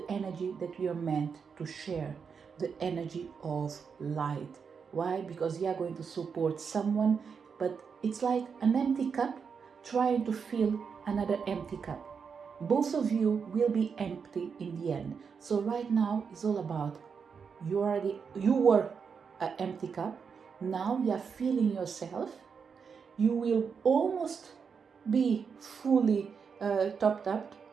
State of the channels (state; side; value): quieter; left; 6.1 dB